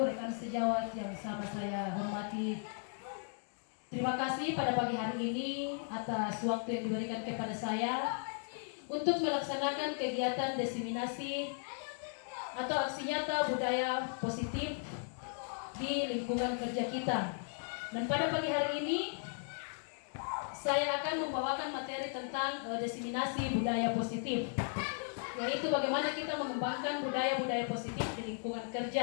rekan sejawat yang sama saya hormati. Terima kasih pada pagi hari ini atas waktu yang diberikan kepada saya untuk melaksanakan kegiatan diseminasi atau aksi nyata budaya positif di lingkungan kerja kita. Dan pada pagi hari ini saya akan membawakan materi tentang diseminasi budaya positif, yaitu bagaimana kita mengembangkan budaya-budaya positif di lingkungan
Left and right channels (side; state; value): right; silent; 54 dB below the other